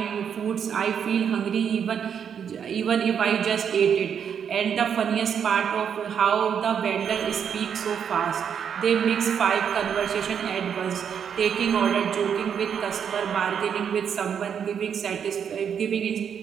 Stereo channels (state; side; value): quieter; left; 7.8 dB